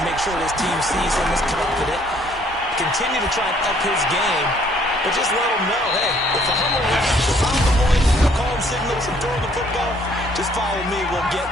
make sure his team sees him as confident. Continue to try and up his game, but just let him know, hey, if I'm around, if I'm the one calling signals and throwing the football, just follow me, we'll get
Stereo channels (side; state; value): both; normal; correlation 0.62